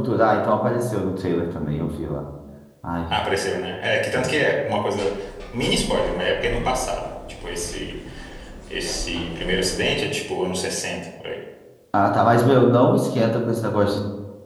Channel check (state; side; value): identical; both; correlation 1.00